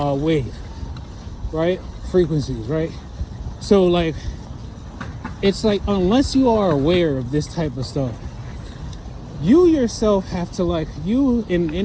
right? Frequencies, right? So like, it's like, unless you are aware of this type of stuff, you yourself have to, like, you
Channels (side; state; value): both; identical; correlation 1.00